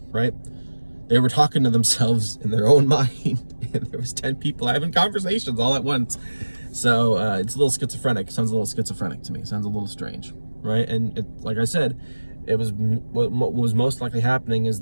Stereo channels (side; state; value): both; inverted; correlation -1.00